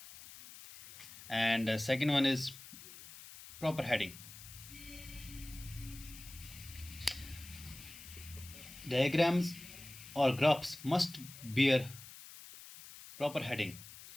and second one is proper heading. Diagrams or graphs must bear proper heading.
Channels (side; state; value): left; noise; hiss, 16 dB below the sound